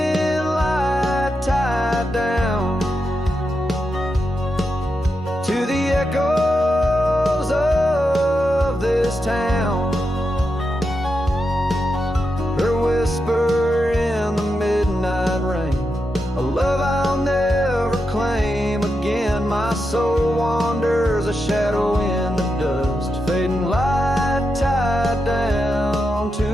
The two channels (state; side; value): normal; both; correlation 0.86